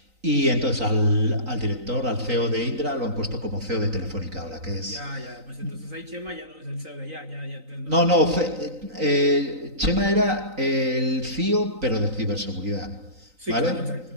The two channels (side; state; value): left; late; 3.9 ms